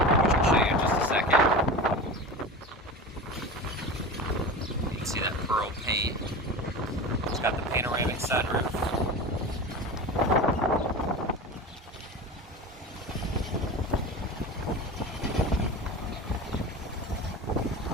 which I'll show you in just a second. You can see that pearl paint. It's got the panoramic sunroof.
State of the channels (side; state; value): both; normal; correlation 0.29